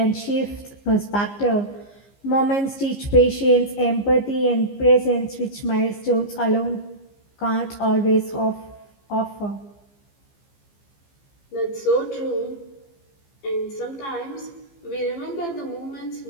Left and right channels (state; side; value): late; right; 15 ms